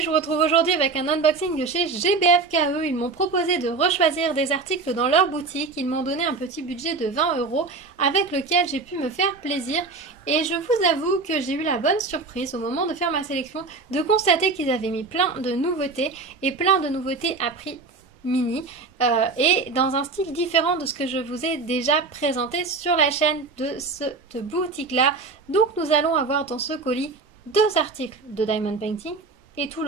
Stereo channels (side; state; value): left; quieter; 4.0 dB